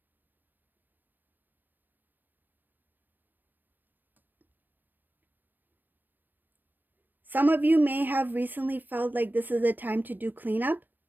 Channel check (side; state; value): left; late; 0.091 ms